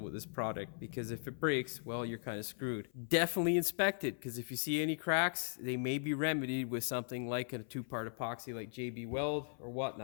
with this product, because if it breaks, well, you're kind of screwed. Definitely inspect it, because if you see any cracks, they may be remedied with something like a 2-part epoxy like JB Weld or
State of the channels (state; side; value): silent; right; 52 dB below the other